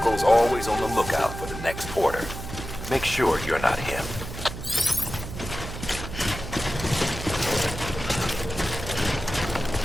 always on the lookout for the next porter. Make sure you're not him.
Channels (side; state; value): right; noise; hum, 9 dB below the sound